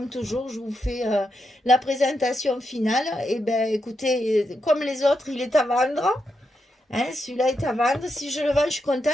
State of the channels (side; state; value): both; normal; correlation 0.84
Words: toujours, je vous fais la présentation finale. Et ben, écoutez, comme les autres, il est à vendre. Hein, celui-là est à vendre. Si je le vends, je suis